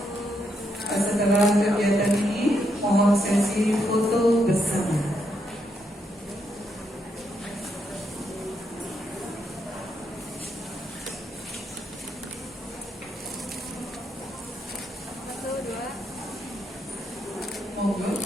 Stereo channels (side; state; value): both; normal; correlation 0.79